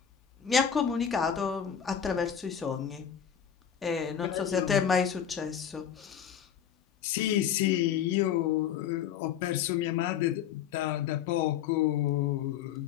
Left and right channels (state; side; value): quieter; right; 8.7 dB